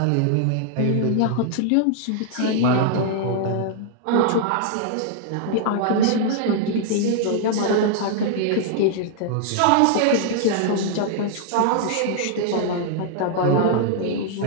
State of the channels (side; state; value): both; different; correlation -0.01